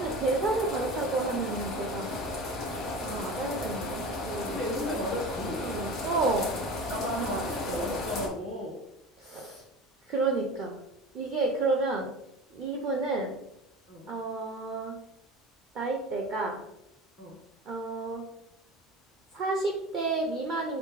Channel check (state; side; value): normal; both; correlation 0.33